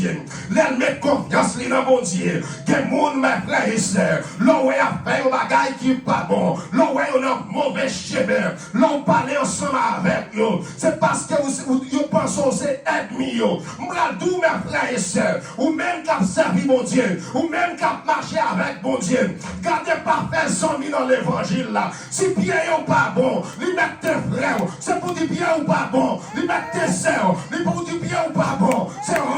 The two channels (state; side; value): identical; both; correlation 1.00